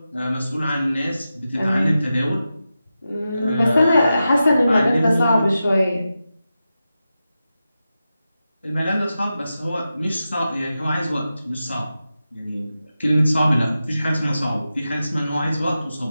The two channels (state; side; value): inverted; both; correlation -0.91